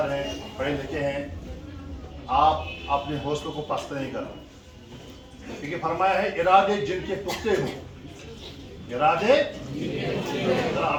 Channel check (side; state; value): both; identical; correlation 1.00